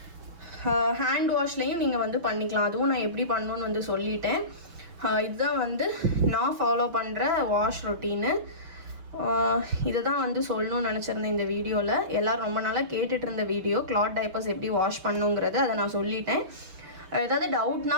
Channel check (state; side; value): late; left; 6.0 ms